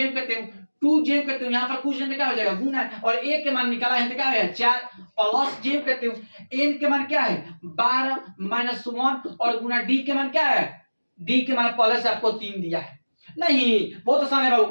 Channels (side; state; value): both; inverted; correlation -1.00